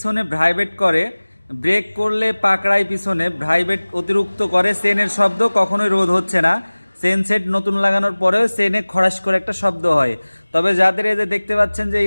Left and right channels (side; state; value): both; inverted; correlation -1.00